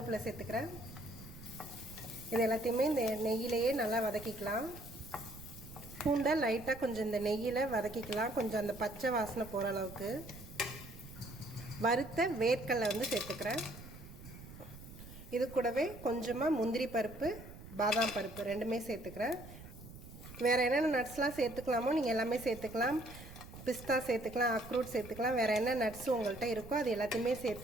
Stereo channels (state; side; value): noise; right; rumble, 15 dB below the sound